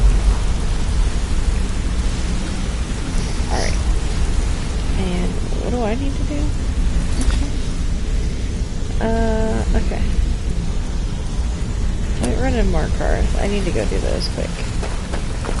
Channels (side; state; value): both; identical; correlation 1.00